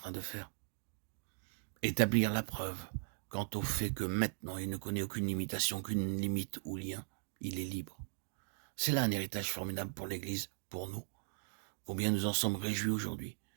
de faire? Établir la preuve quant au fait que maintenant il ne connaît aucune limitation, aucune limite ou lien. Il est libre. C'est là un héritage formidable pour l'Église, pour nous. Combien nous en sommes réjouis aujourd'hui.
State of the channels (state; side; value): silent; left; digital silence